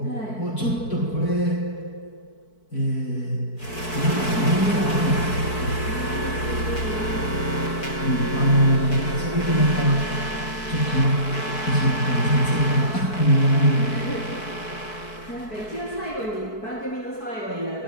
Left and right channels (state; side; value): late; right; 4.6 ms